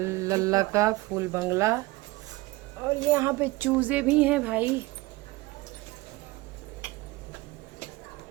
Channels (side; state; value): left; quieter; 21.1 dB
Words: लल्ला का फूल बंगला। और यहाँ पे चूजे भी हैं भाई।